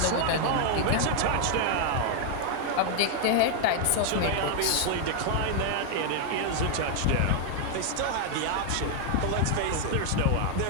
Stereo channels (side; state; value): both; different; correlation 0.00